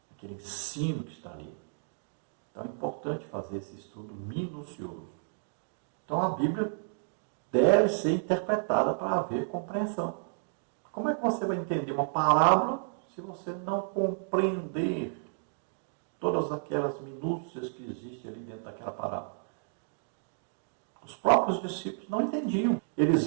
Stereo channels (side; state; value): left; silent; digital silence